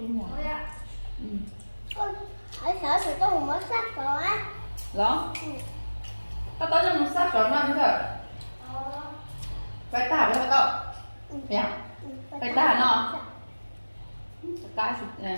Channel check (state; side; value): inverted; both; correlation -1.00